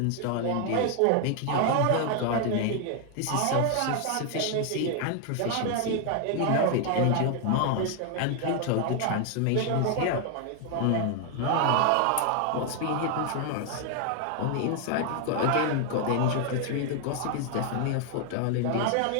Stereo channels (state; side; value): different; both; correlation 0.00